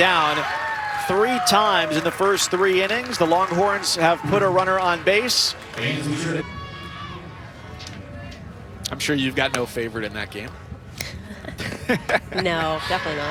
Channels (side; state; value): both; identical; correlation 1.00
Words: 3 times in the first 3 innings. The Longhorns have put a runner on base. I'm sure you've got no favorite in that game. No, definitely